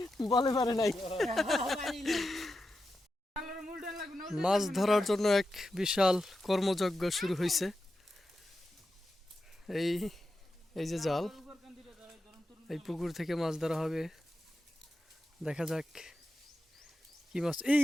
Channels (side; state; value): both; normal; correlation 0.89